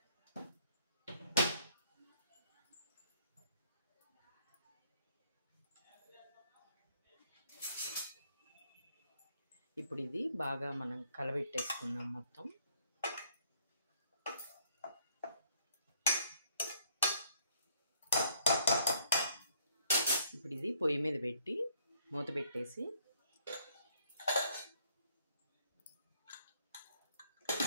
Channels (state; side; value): inverted; both; correlation -0.67